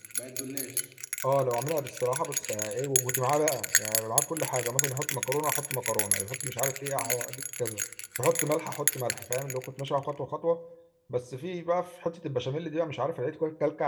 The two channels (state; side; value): identical; both; correlation 1.00